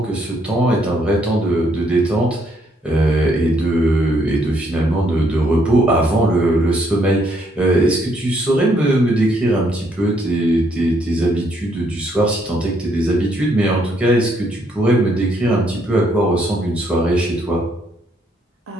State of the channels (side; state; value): both; normal; correlation 0.71